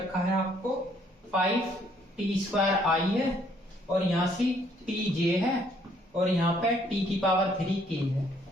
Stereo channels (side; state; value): both; normal; correlation 0.66